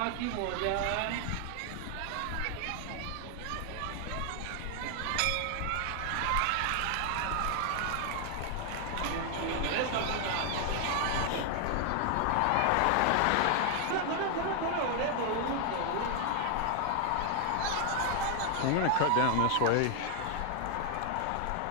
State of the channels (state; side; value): different; both; correlation 0.00